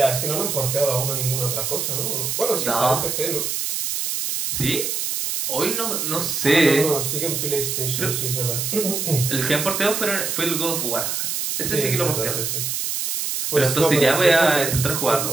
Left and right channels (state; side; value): noise; right; hiss, 2 dB below the sound